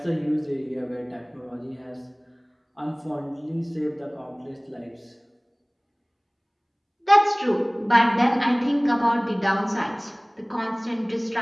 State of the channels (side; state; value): both; identical; correlation 1.00